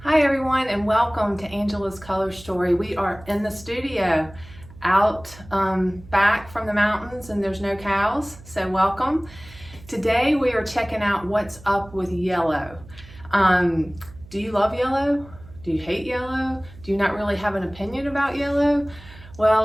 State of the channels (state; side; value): noise; right; hum, 20 dB below the sound